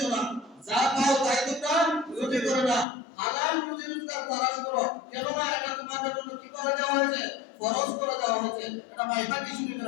না, যা পাও তাই তোমরা রুজি করো না। হালাল রুজি রোজগার তালাশ করো। কেননা এটা তোমাদের জন্য কি করে দেওয়া হয়েছে? ফরজ করে দেওয়া হয়েছে। এটা বাইহাকি শরীফের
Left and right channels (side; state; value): right; drops out; at 2.9 s